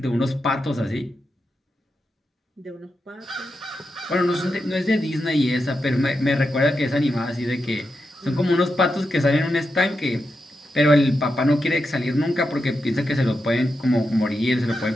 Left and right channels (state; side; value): normal; both; correlation 0.87